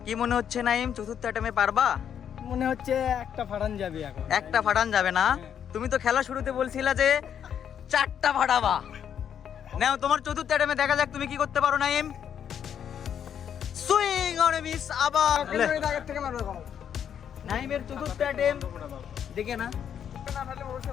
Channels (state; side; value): quieter; right; 8.7 dB